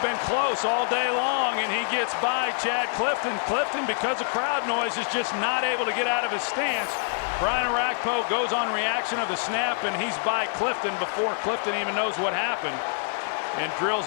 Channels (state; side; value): silent; right; 61 dB below the other